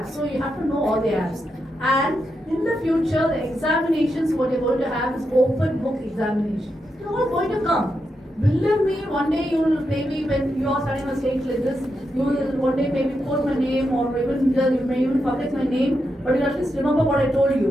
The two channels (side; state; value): both; normal; correlation 0.85